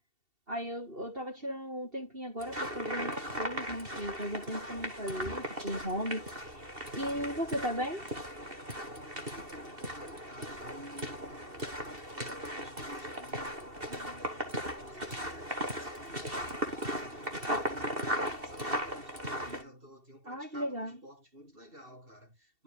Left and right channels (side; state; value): left; late; 2.7 ms